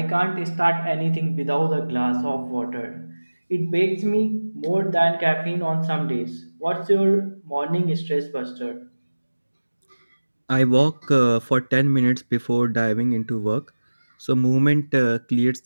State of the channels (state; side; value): inverted; both; correlation -1.00